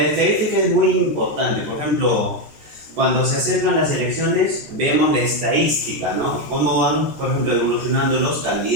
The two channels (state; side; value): late; left; 14 ms